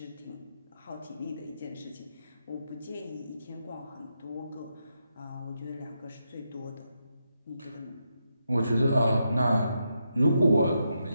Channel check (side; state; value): both; inverted; correlation -0.83